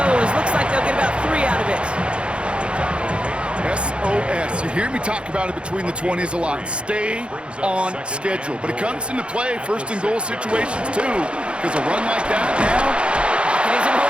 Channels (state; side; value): late; left; 0.057 ms